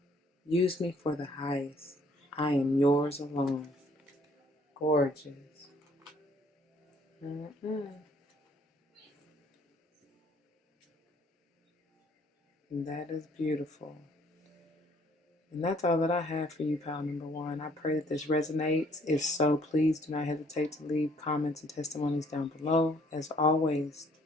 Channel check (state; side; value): normal; both; correlation 0.62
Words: Use me for the highest. I am yours alone. Gorgeous. And that is beautiful. And that's all that I have for you, pile number one. I pray that this resonates. If so, please do not hesitate to leave comments and testimonies down below. As always,